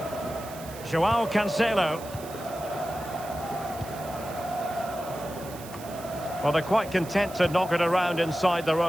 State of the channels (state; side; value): noise; right; hiss, 17 dB below the sound